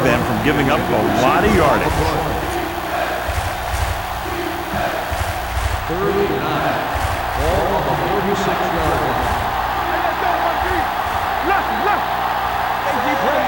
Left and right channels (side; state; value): both; identical; correlation 1.00